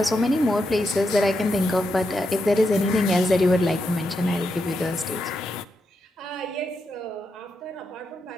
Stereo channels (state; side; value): normal; both; correlation 0.84